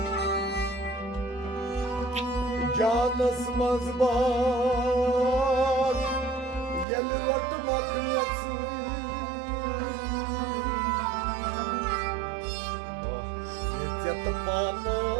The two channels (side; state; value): left; drops out; at 6.9 s